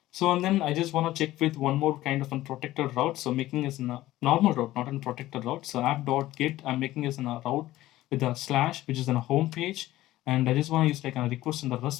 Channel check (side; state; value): right; quieter; 15.8 dB